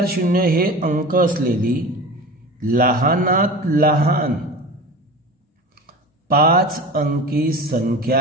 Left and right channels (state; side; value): normal; both; correlation 0.34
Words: 0 हे अंक असलेली लहानात लहान 5 अंकी